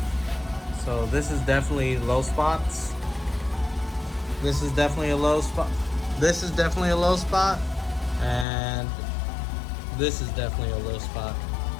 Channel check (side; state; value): right; drops out; at 8.5 s